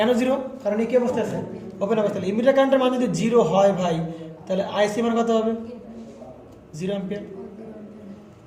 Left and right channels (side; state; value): both; identical; correlation 1.00